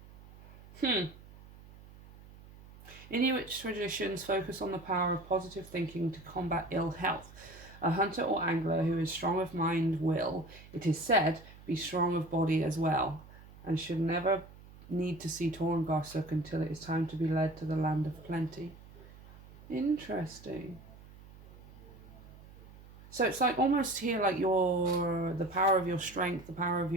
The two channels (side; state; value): right; noise; hum, 20 dB below the sound